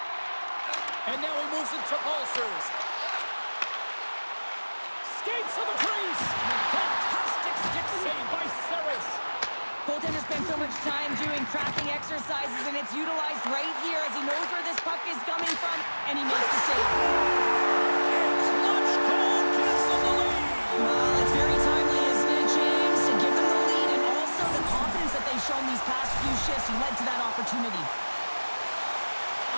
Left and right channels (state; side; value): inverted; both; correlation -1.00